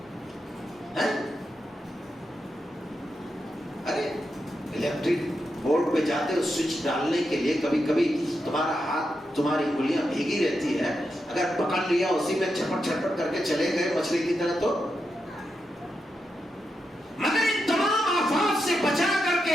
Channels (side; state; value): both; normal; correlation 0.86